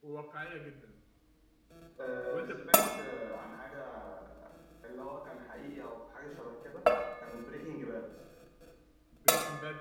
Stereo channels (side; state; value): both; identical; correlation 1.00